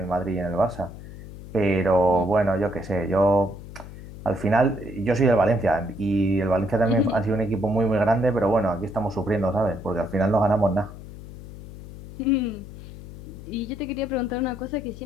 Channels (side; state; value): left; noise; hum, 13 dB below the sound